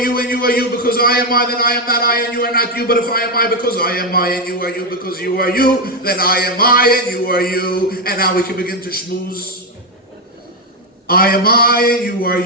and you are you because I am I, then I am not I and you are not you. But if I am I because I am I and you are you because you are you, then I am I and you are you. And now we can begin to schmooze. I am I and you are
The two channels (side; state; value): both; normal; correlation 0.06